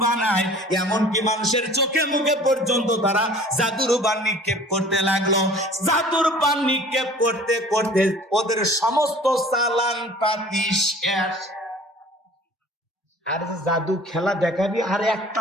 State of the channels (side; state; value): both; normal; correlation 0.48